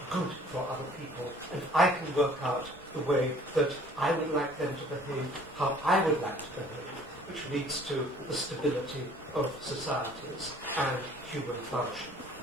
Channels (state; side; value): normal; both; correlation 0.53